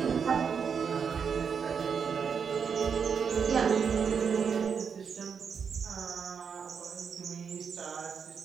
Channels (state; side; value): quieter; left; 6.5 dB